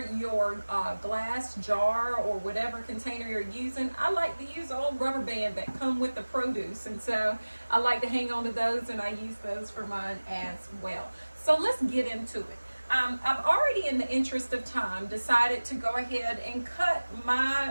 your glass jar or whatever container you're using. I like to use old rubber band that come with the produce, and so I like to hang on to those, and I use those for mine as well. So let's get into it. I've already, in the interest of time, decided to go ahead and cut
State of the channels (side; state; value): both; inverted; correlation -1.00